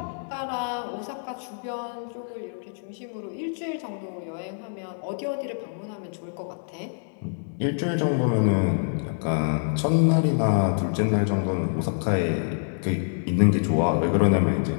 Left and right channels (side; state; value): right; silent; digital silence